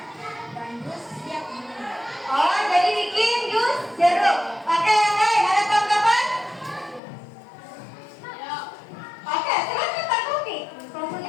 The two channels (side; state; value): right; drops out; at 7.0 s